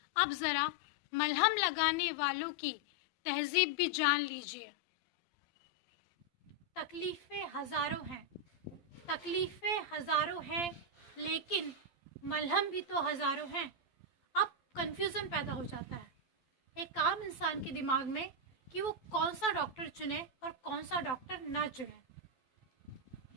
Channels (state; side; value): late; right; 12 ms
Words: अब ज़रा मलहम लगाने वालों की तहज़ीब भी जान लीजिए। तकलीफ़ें हज़ारों हैं, तकलीफ़ें हज़ारों हैं, लेकिन मलहम भी तो हज़ारों हैं। अब कन्फ्यूज़न पैदा हो जाता है एक आम इंसान के दिमाग में कि वो कौन सा डॉक्टर चुने और कौन सा डॉक्टर ना चुने।